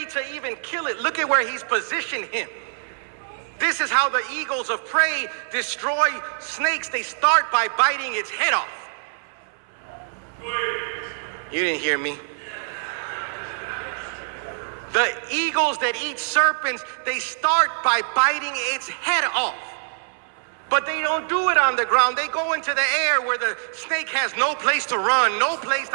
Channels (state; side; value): silent; left; 62 dB below the other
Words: to even kill it. Look at where he's positioned him. This is how the eagles of prey destroy snakes. They start by biting its head off. You didn't hear me. The eagles that eat serpents, they start by biting its head off. But they don't do it on the ground. They go into the air where the snake has no place to run, no place